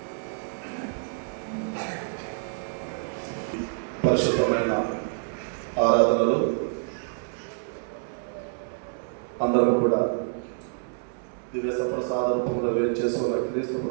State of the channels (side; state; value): left; silent; digital silence